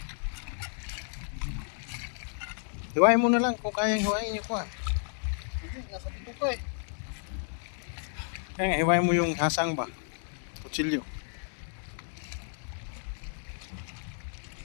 Hiwain mo na lang kung kayang hiwain yung kuhan. Hindi, nasa dito ko eh. Kaya nga, hiwain mo yung hasang ba? Kutsilyo.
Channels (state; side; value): silent; right; 57 dB below the other